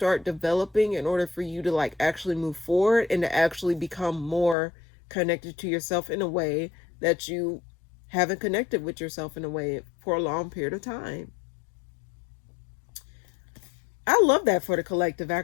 developing in order for you to, like, actually move forward and to actually become more connected to yourself in a way that you haven't connected with yourself in a way for a long period of time. I love that for the collective,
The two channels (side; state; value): right; drops out; at 4.5 s